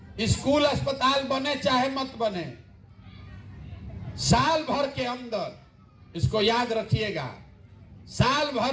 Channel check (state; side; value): identical; both; correlation 1.00